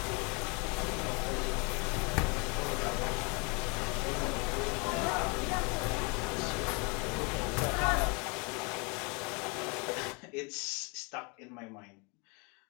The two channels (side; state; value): right; quieter; 31.6 dB